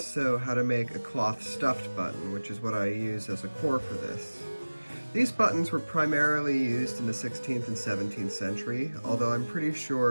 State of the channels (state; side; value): inverted; both; correlation -1.00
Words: how to make a cloth-stuffed button, which is what I use as a core for this. These buttons were primarily used in the 16th and 17th century, although I'm pretty